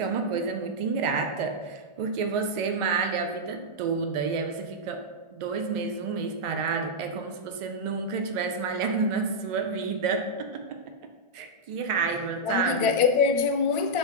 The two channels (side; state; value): left; late; 1.4 ms